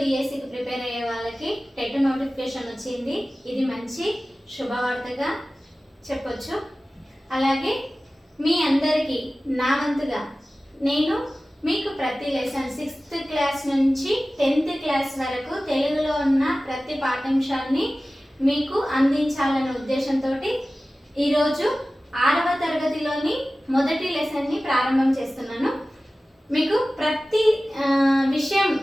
ప్రిపేర్ అయ్యే వాళ్ళకి టెట్ నోటిఫికేషన్ వచ్చింది. ఇది మంచి శుభవార్తగా చెప్పొచ్చు. అలాగే మీ అందరికీ నా వంతుగా నేను మీకు ప్రతి లెసన్ 6th క్లాస్ నుంచి 10th క్లాస్ వరకు తెలుగులో ఉన్న ప్రతి పాఠ్యాంశాన్ని మీకు అందించాలనే ఉద్దేశంతో ఈరోజు 6వ తరగతిలోని మొదటి లెసన్ని ప్రారంభం చేస్తున్నాను. మీకు ప్రతి విషయం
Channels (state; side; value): normal; both; correlation 0.96